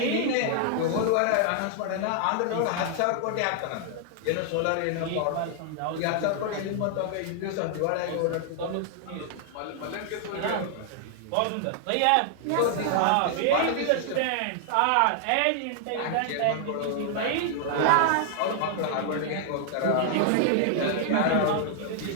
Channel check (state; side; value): different; both; correlation 0.00